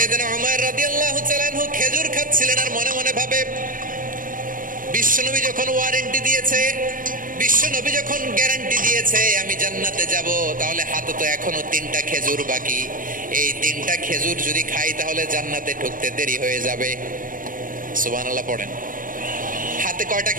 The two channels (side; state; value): left; late; 0.40 ms